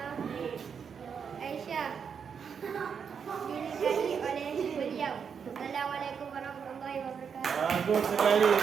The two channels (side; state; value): left; quieter; 6.7 dB